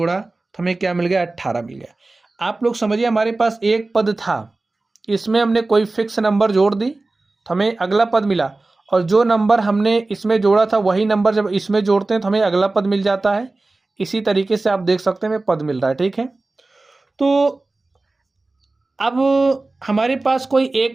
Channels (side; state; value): left; quieter; 3.2 dB